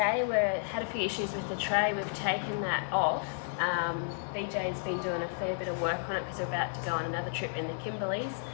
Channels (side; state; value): right; silent; digital silence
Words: we had a few issues with the tray. We've taken that off. BJ's been doing a fair bit of work on it because we're about to go on another trip in the Kimberleys.